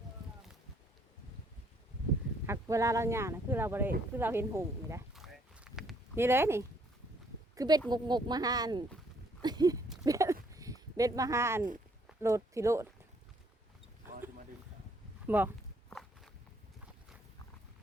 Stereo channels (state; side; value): normal; both; correlation 0.66